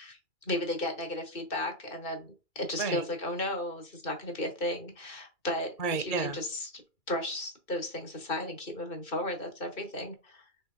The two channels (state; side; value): late; right; 2.3 ms